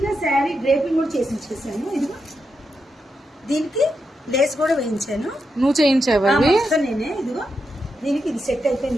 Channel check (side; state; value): both; normal; correlation 0.85